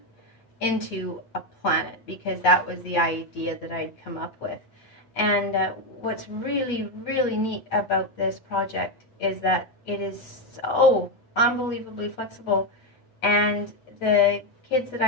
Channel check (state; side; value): late; right; 7.7 ms